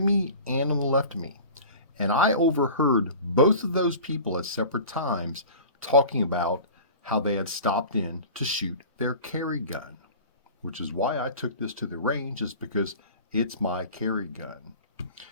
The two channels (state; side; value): inverted; both; correlation -0.39